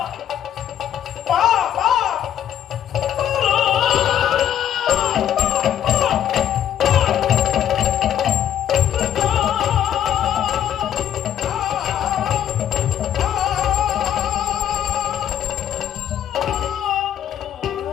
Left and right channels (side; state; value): right; quieter; 10.3 dB